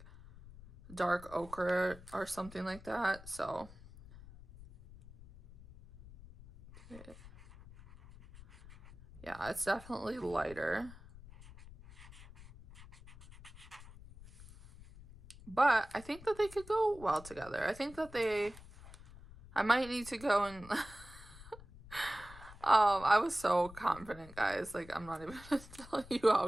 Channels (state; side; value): noise; left; rumble, 18 dB below the sound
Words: dark ochre or something like that. So yeah, it's definitely lighter. But I think that they could go well together. I think that I might need to go and I was so confident, guys. Like, I'm not even gonna tell you how